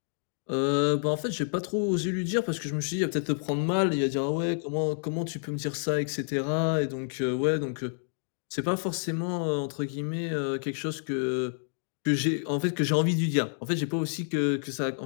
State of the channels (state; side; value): silent; right; digital silence